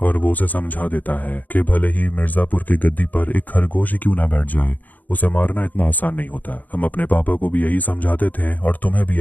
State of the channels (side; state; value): right; late; 0.080 ms